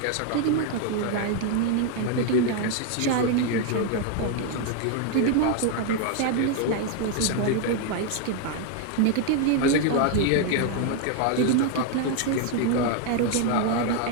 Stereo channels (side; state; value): both; different; correlation 0.01